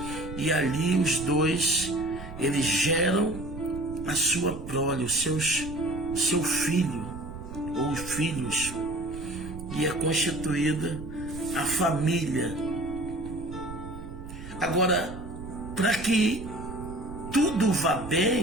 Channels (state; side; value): noise; right; rumble, 12 dB below the sound